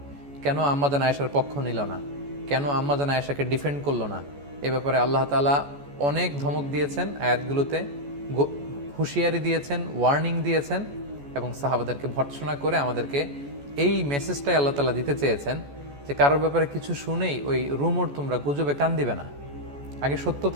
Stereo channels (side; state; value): left; late; 14 ms